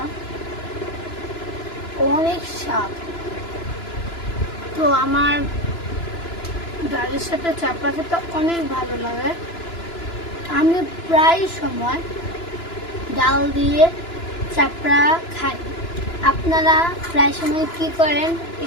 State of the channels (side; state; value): right; late; 2.9 ms